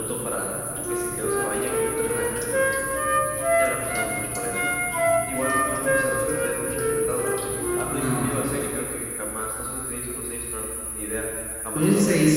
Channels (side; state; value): both; identical; correlation 1.00